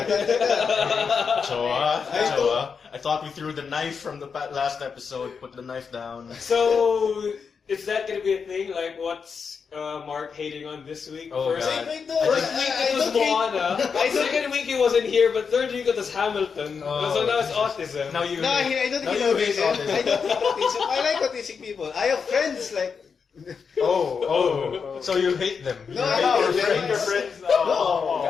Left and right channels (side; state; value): right; quieter; 5.9 dB